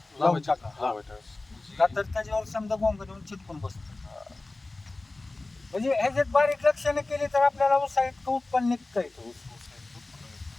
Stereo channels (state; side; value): quieter; right; 3.1 dB